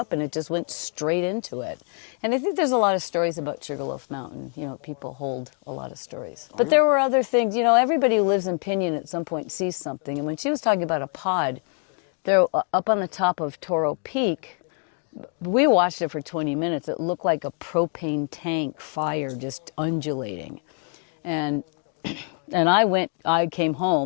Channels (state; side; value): quieter; right; 39.0 dB